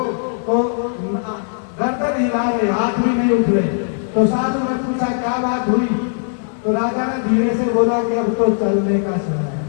तो गर्दन हिला रहे, हाथ भी नहीं उठ रहे। तो साधु ने पूछा क्या बात हुई? तो राजा ने धीरे से बोला कि अब तो चलने का समय है,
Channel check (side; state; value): right; silent; digital silence